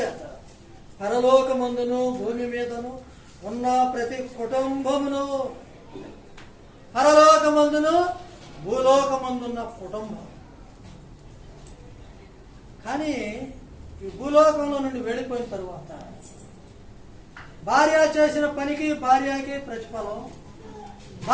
పరలోకమందును భూమి మీదను ఉన్న ప్రతి కుటుంబమును, పరలోకమందును భూలోకమందున్న కుటుంబం. కానీ ఈ భూలోకంలో నుండి వెళ్ళిపోయిన తరువాత భార్య చేసిన పనికి భార్యకి ప్రతిఫలం,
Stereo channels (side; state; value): both; identical; correlation 1.00